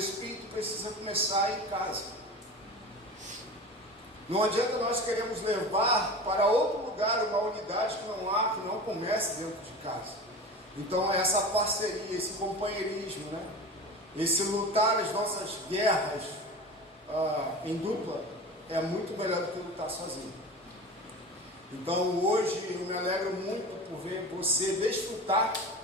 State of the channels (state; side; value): normal; both; correlation 0.33